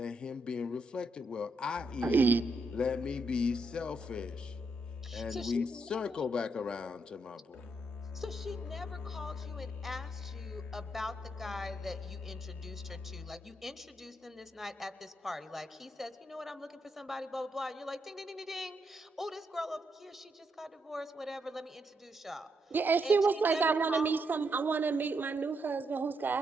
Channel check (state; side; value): normal; both; correlation 0.79